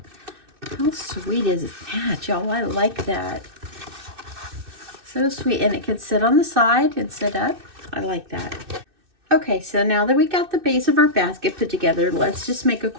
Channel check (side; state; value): left; late; 2.6 ms